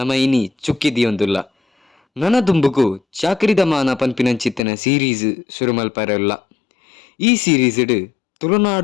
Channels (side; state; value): right; drops out; at 4.6 s